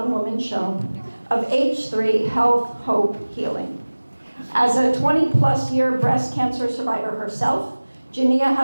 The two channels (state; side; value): inverted; both; correlation -1.00